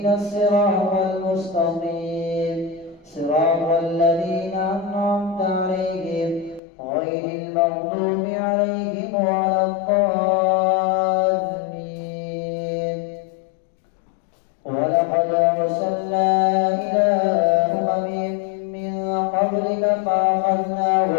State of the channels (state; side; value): drops out; right; at 6.6 s